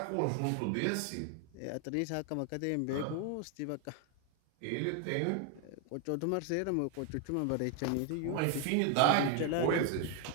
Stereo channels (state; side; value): different; both; correlation 0.00